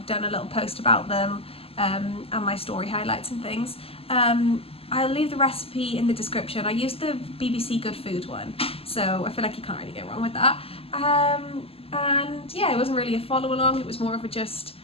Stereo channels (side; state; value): right; late; 0.28 ms